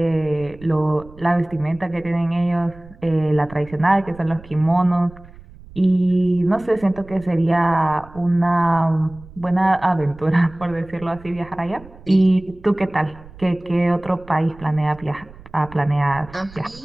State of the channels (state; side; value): noise; right; rumble, 21 dB below the sound